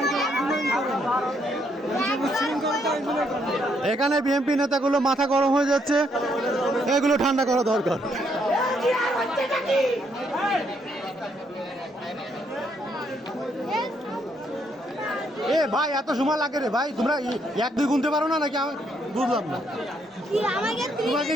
এখানে বিএনপি নেতাগুলো মাথা গরম হয়ে যাচ্ছে, এগুলো ঠান্ডা করা দরকার। এ ভাই, এত সময় লাগে রে ভাই, তোমরা 1-2 গুনতে পারো না নাকি? আমি বুঝলাম না। তোমাকে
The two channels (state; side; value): normal; both; correlation 0.73